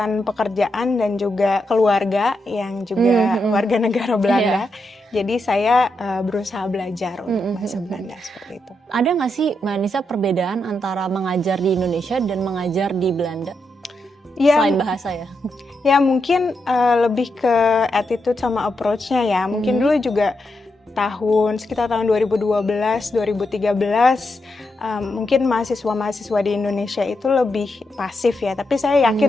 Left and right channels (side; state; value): both; normal; correlation 0.84